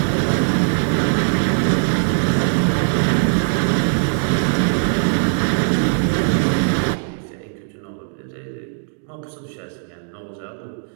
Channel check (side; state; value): left; silent; digital silence